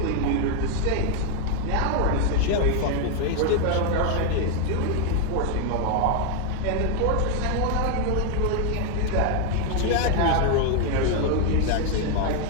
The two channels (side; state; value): both; different; correlation 0.01